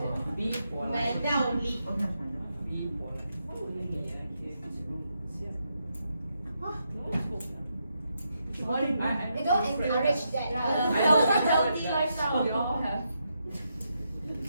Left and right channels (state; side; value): inverted; both; correlation -0.82